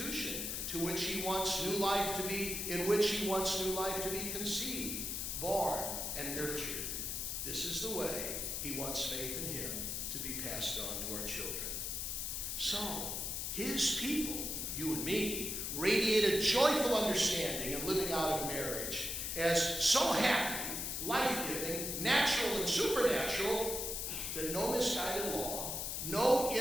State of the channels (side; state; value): left; noise; hiss, 2 dB below the sound